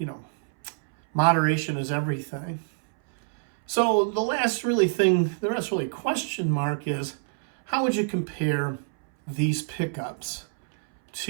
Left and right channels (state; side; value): silent; left; 61 dB below the other